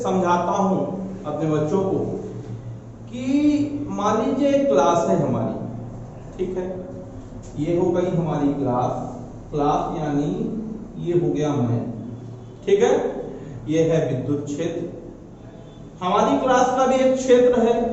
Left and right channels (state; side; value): identical; both; correlation 1.00